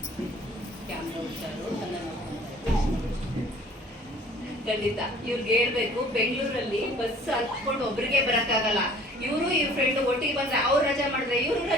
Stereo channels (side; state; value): both; normal; correlation 0.51